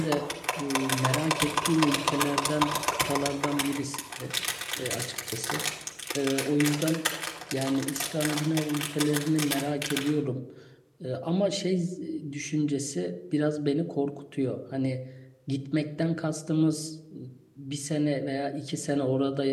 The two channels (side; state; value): both; identical; correlation 1.00